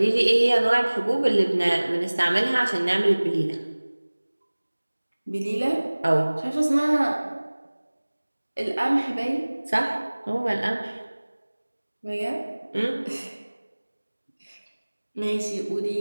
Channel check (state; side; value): inverted; both; correlation -1.00